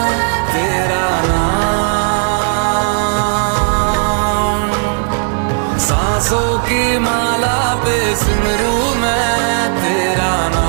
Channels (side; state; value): left; silent; 65 dB below the other